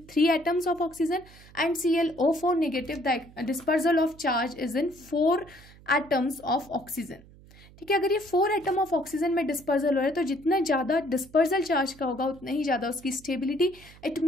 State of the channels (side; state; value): right; noise; hum, 23 dB below the sound